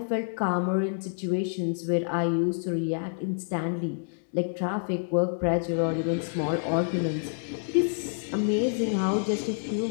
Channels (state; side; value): silent; right; digital silence